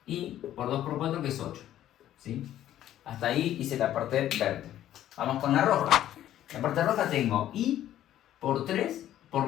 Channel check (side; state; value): right; quieter; 12.3 dB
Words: i por 2 por 4 que es 8, ¿sí? Hasta ahí hice la parte verde. Vamos con la roja. En la parte roja tengo i por 3 por